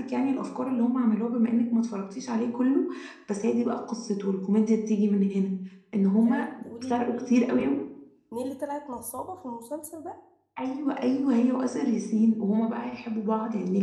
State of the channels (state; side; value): identical; both; correlation 1.00